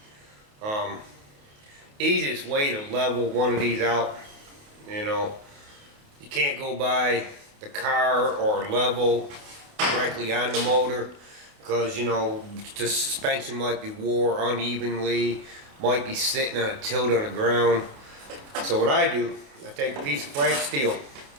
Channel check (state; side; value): late; left; 28 ms